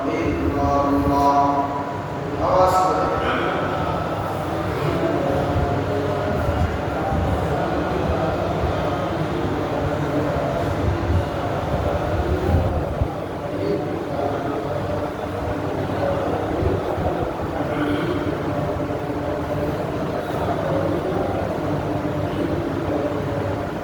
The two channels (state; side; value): identical; both; correlation 1.00